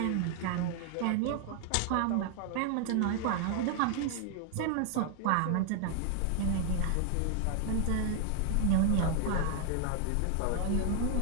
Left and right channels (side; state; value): both; different; correlation 0.00